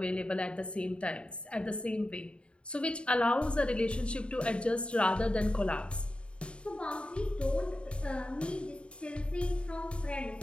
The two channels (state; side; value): late; right; 0.056 ms